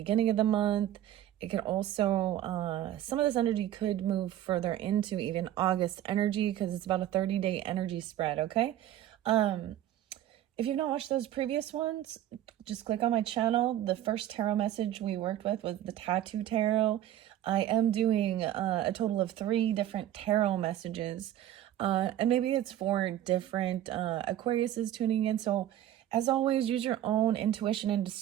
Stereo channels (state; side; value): quieter; left; 12.3 dB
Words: of the month. It could also, some of this energy could move further into even August energy because it's about a 30-day energy spread, okay? If you've not watched those previous ones, just click on my channel. The first tarot message we worked with was the Tattoo Tarot. I am doing a total of 3 different tarot messages, and maybe it's for different Aquariuses tuning in. So as always, use your own intuition and